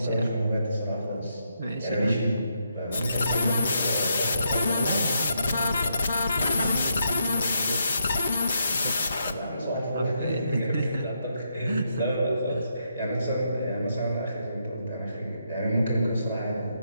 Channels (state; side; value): inverted; both; correlation -0.79